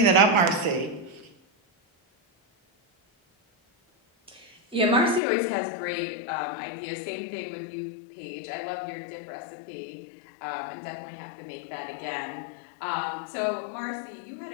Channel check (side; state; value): right; drops out; at 5.2 s